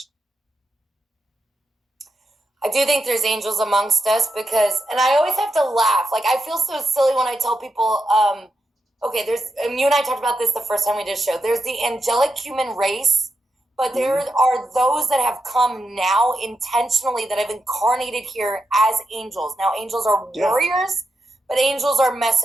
I do think there's angels amongst us because, and I always have to laugh. Like, I feel so silly when I tell people, okay, and you and I talked about this the first time we did a show. There's the angelic human race, but there are those that have come now intentionally that have incarnated here as angels. Now, angels are warriors, but angels are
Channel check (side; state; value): both; normal; correlation 0.86